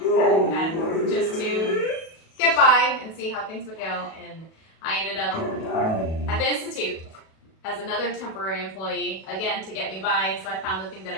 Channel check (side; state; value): right; late; 37 ms